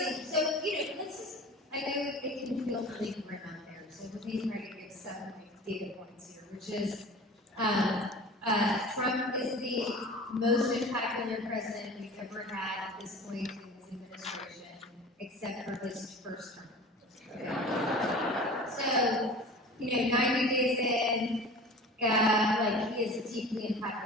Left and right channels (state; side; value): normal; both; correlation 0.39